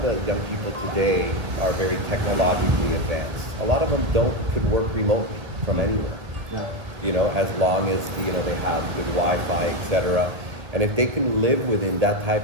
the young people today are very technologically advanced. A lot of them could work remotely from anywhere. You know, as long as they have good Wi-Fi, etc. And if they can live within that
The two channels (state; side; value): late; left; 1.6 ms